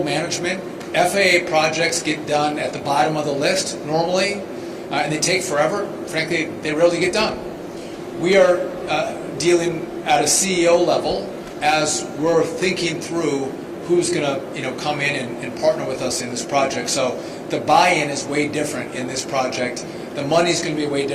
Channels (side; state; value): both; identical; correlation 1.00